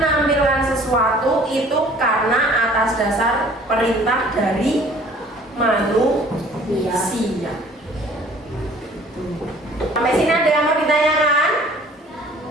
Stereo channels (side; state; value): both; normal; correlation 0.52